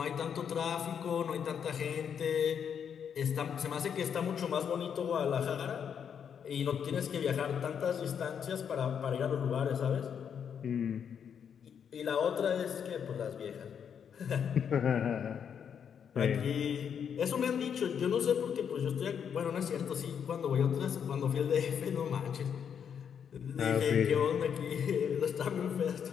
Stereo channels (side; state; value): right; quieter; 7.8 dB